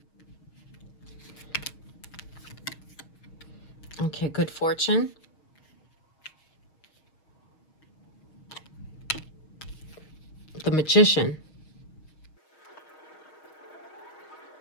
Okay, good fortune. The Magician.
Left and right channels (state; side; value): late; right; 6.4 ms